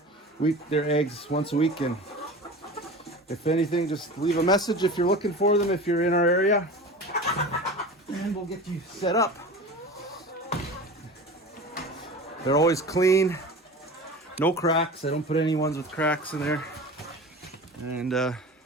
eggs once a week. And if anything, just leave a message if you're looking for them, if you're in our area, and we'll get you set up. They're always clean. No cracks. I don't put any ones with cracks in there. And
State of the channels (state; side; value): normal; both; correlation 0.34